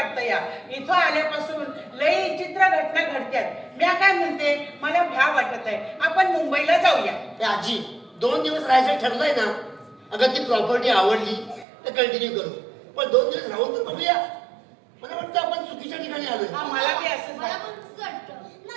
या. इथं आल्यापासून लई चित्र घटना घडत्यात. मी काय म्हणते, मला भ्या वाटत आहे, आपण मुंबईला जाऊया. या आजी 2 दिवस राहायचं ठरलंय ना. अगं ती प्रॉपर्टी आवडली तर कंटिन्यू करू, पण 2 दिवस राहून तर बघूया. मला वाटतं आपण चुकीच्या ठिकाणी आलोय. हा मला बी असंच मला वाटतं. पण तसंच वाटतं.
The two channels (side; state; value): left; drops out; at 11.7 s